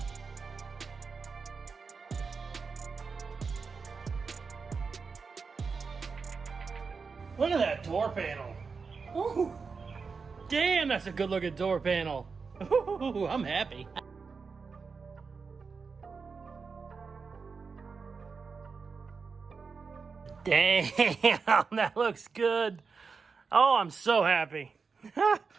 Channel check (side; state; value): left; quieter; 5.0 dB